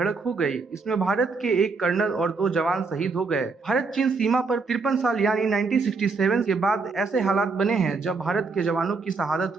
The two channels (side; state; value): left; quieter; 4.3 dB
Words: हो गई। इसमें भारत के एक कर्नल और 2 जवान शहीद हो गए। भारत चीन सीमा पर 53 साल यानी 1967 के बाद ऐसे हालात बने हैं जब भारत के जवानों की